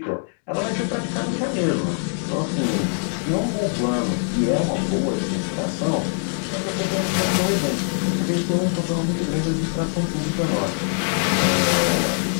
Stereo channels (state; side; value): silent; right; 56 dB below the other